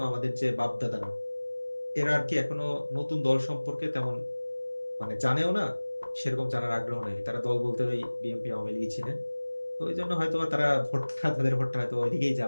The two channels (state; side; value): inverted; both; correlation -1.00